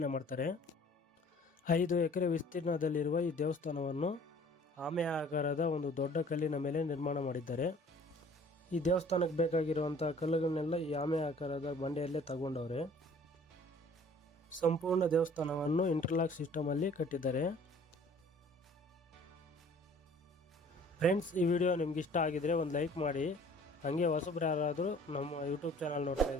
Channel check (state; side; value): normal; both; correlation 0.52